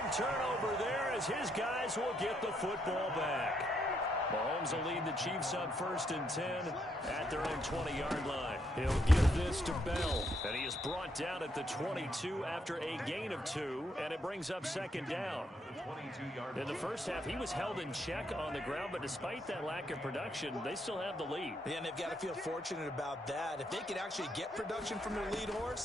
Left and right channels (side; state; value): both; normal; correlation 0.75